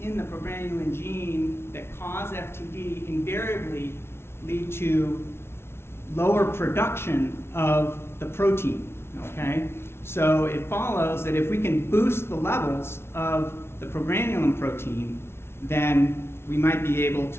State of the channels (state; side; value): late; right; 0.12 ms